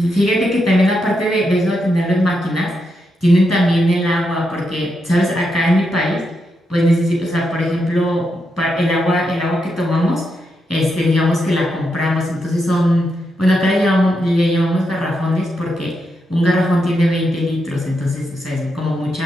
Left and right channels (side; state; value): both; normal; correlation 0.83